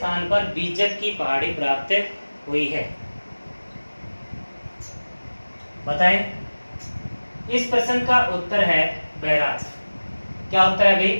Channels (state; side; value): inverted; both; correlation -1.00